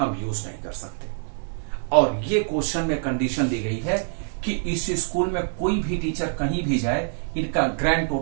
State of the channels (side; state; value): left; silent; digital silence